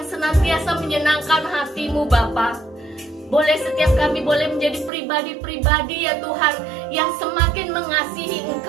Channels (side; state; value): left; drops out; at 4.9 s